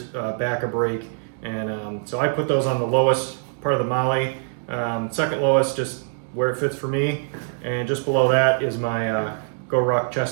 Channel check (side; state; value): left; silent; digital silence